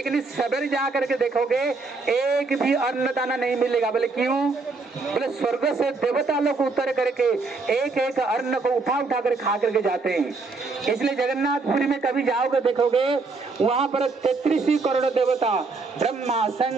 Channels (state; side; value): quieter; left; 4.0 dB